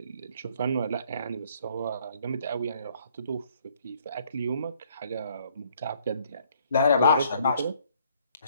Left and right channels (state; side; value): inverted; both; correlation -0.64